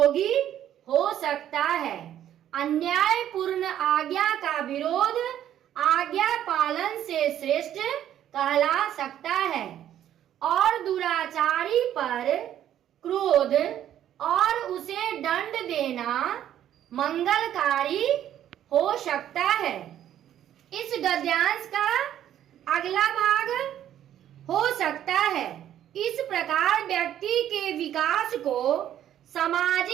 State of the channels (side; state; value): left; quieter; 11.1 dB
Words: हो सकता है। अन्यायपूर्ण आज्ञा का विरोध आज्ञा पालन से श्रेष्ठ कहला सकता है और दुराचारी पर क्रोध और उसे दंड देना मंगलकारी हो सकता है। इस गद्यांश का अगला भाग हो सकता है। इस प्रकार व्यक्ति के विकास को